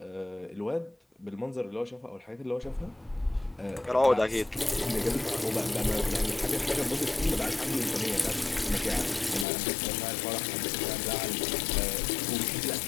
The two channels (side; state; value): right; drops out; at 9.5 s